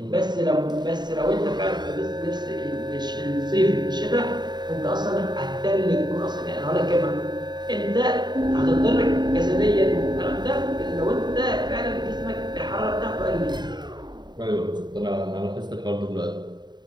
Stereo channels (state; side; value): late; left; 0.21 ms